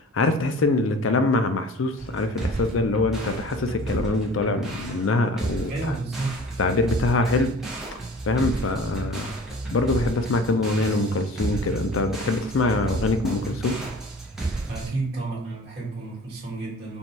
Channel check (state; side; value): normal; both; correlation 0.44